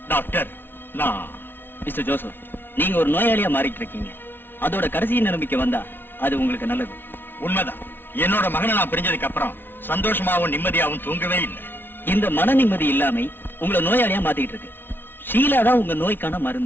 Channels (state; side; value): late; right; 0.10 ms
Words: டாக்டர், நான். மிஸ்டர் ஜோசப், நீங்க ஒரு நோயாளியா மாறிட்டு இருக்கீங்க. அதோட கடைசி நிலைமைக்கு வந்தா அது உங்களுக்கு நல்லது. உண்மைதான். என்னோட மகனை நான் பிரிஞ்சதுக்கு அப்புறம் சந்தோஷமாவும் நிம்மதியாவும் தூங்கவே இல்லை. இந்த மன நிம்மதி இல்லாம உங்களை நோயாளியா மாத்திட்டு இருக்கு. ஷீலா தான் உங்க நோய்க்கான